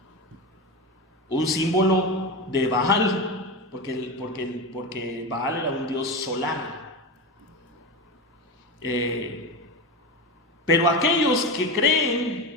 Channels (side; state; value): both; normal; correlation 0.21